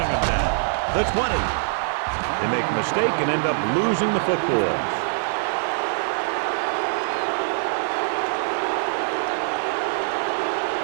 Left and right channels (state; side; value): silent; left; digital silence